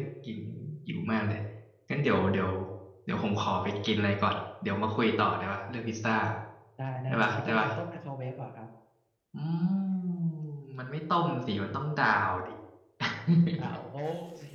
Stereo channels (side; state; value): both; identical; correlation 1.00